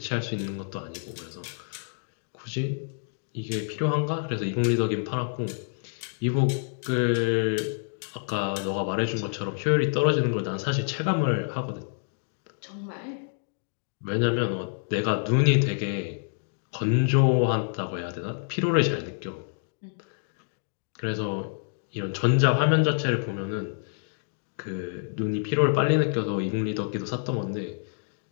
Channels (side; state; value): right; silent; digital silence